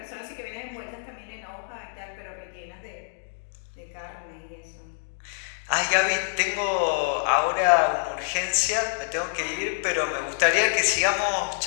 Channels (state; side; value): silent; right; digital silence